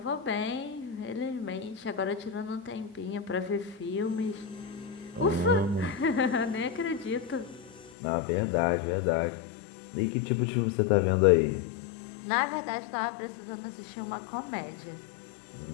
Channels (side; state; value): right; drops out; at 7.9 s